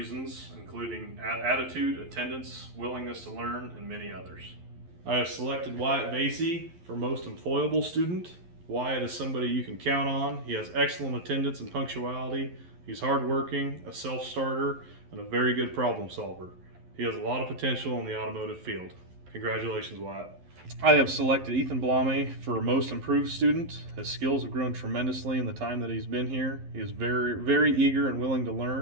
including attitude, attendance, willingness to learn, and many others. I have selected Wyatt Vasey for most employable student. Wyatt is somebody you can count on. He has excellent attendance and punctuality. He's hardworking, a self-starter, and a very good problem solver. He has a lot of potential in the automotive field. Congratulations, Wyatt. I have selected Ethan Blame for most improved student. His skills have grown tremendously in the time that he's been here. He is very eager and willing to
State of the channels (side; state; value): left; late; 11 ms